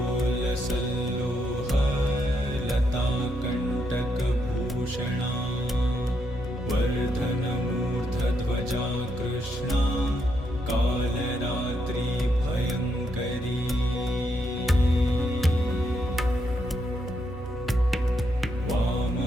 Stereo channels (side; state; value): both; normal; correlation 0.78